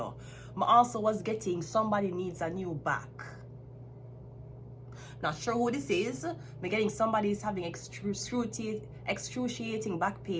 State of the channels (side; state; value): both; identical; correlation 1.00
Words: I also was getting somebody needs a new back. Not sure who this is. I'm getting somebody is having excruciating back